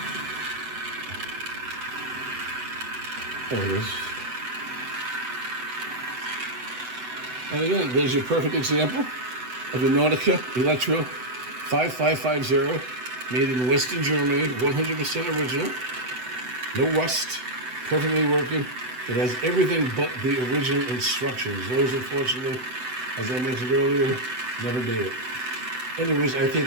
There it is. And again, there's your perfect example of a Nautico Elektro 5550, made in Western Germany, 100% original, no rust, perfectly working. It has everything but the original instructions. Those, unfortunately, as I mentioned earlier, never made it. Anyways, I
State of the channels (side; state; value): left; late; 7.9 ms